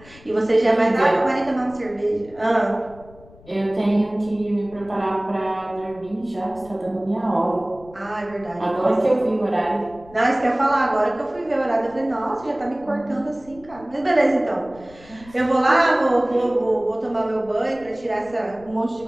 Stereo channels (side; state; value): left; noise; rumble, 23 dB below the sound